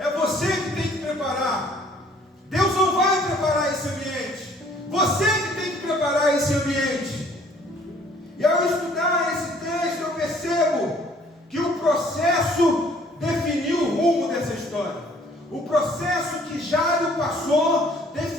você que tem que preparar. Deus não vai preparar esse ambiente. Você que tem que preparar esse ambiente. E ao estudar esse texto, eu percebo que o processo definiu o rumo dessa história. O processo que Jairo passou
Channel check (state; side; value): normal; both; correlation 0.58